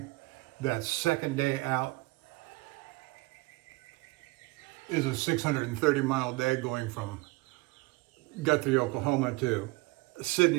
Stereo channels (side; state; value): left; quieter; 23.1 dB